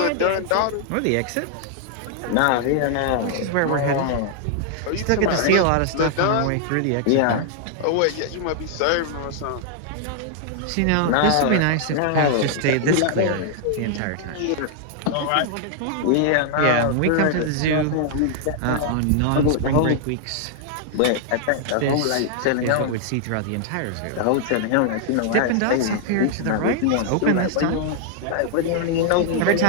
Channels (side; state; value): both; different; correlation -0.01